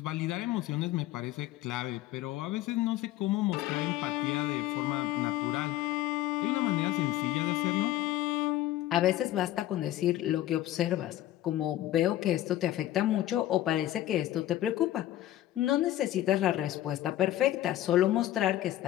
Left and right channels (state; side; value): quieter; right; 14.1 dB